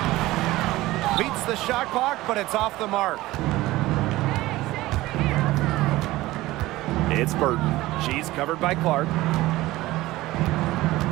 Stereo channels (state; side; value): quieter; left; 17.9 dB